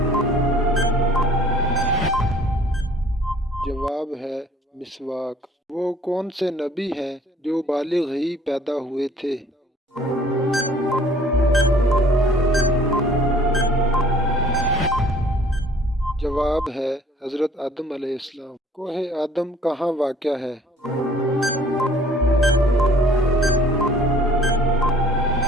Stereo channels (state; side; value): normal; both; correlation 0.55